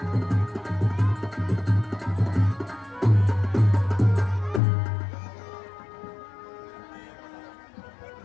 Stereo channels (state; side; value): drops out; right; at 4.6 s